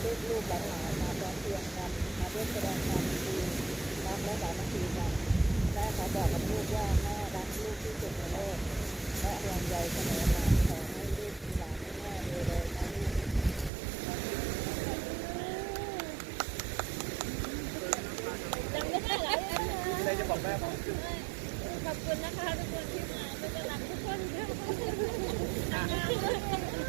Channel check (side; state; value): left; drops out; at 13.7 s